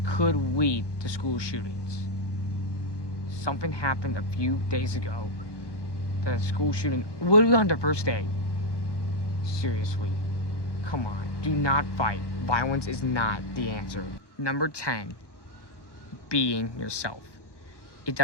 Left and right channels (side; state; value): right; late; 1.1 ms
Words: could lead to school shootings. Something happened a few days ago. The school shooting, literally on the first day. Seriously, come on, do not fight. Violence is not the answer. Number 10, being yourself. It